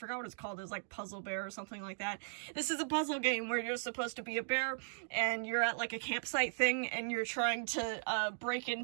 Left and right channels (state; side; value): silent; left; digital silence